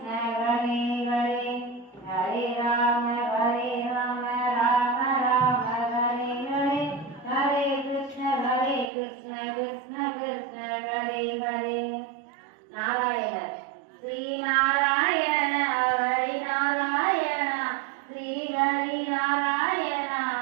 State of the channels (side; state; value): left; drops out; at 8.9 s